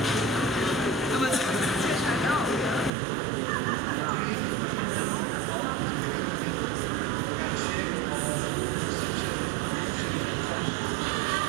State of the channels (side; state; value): left; drops out; at 2.9 s